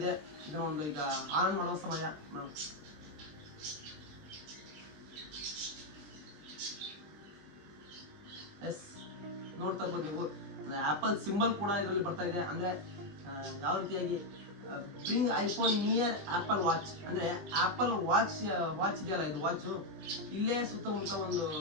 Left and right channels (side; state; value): left; late; 20 ms